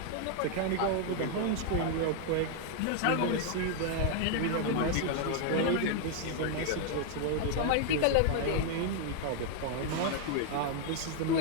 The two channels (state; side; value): different; both; correlation 0.00